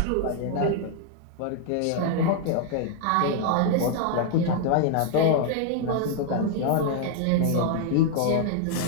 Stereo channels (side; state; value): both; different; correlation 0.00